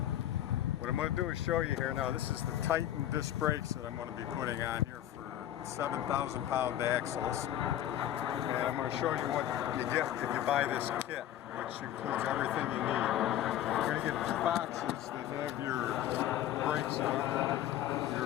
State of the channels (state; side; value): quieter; right; 12.0 dB